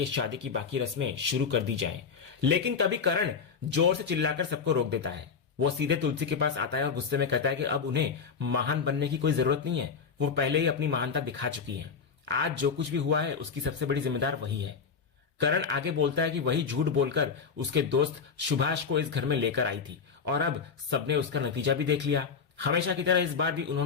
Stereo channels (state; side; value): quieter; right; 5.9 dB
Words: शादी की बाकी रस्में शुरू कर दी जाएं। लेकिन तभी करण जोर से चिल्लाकर सबको रोक देता है। वो सीधे तुलसी के पास आता है और गुस्से में कहता है कि अब उन्हें महान बनने की कोई जरूरत नहीं है, वो पहले ही अपनी महानता दिखा चुकी है। आज जो कुछ भी हुआ है उसकी सबसे बड़ी जिम्मेदार वही है। करण आगे बोलता है कि वही झूठ बोलकर उसके दोस्त सुभाष को इस घर में लेकर आई थी और अब सबने उसका नतीजा भी देख लिया। हमेशा की तरह इस बार भी